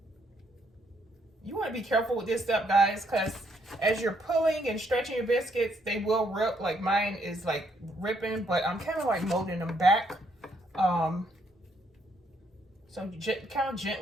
You want to be careful with this step, guys, because as you're pulling and stretching your biscuits, they will rip. Like mine is like ripping, but I'm kind of like molding them back. So you kind of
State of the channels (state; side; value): normal; both; correlation 0.72